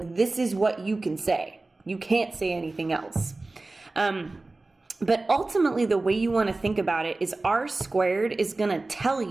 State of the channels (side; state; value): left; quieter; 3.2 dB